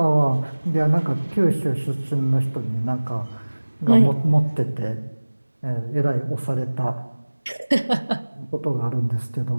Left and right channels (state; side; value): inverted; both; correlation -1.00